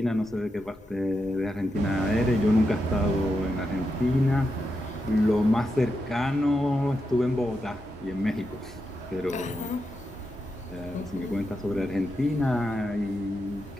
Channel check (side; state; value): both; normal; correlation 0.86